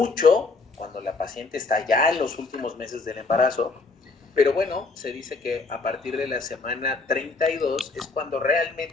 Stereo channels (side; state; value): right; quieter; 3.9 dB